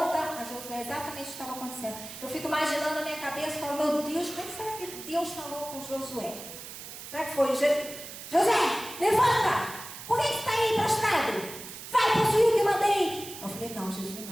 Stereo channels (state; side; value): noise; right; hiss, 12 dB below the sound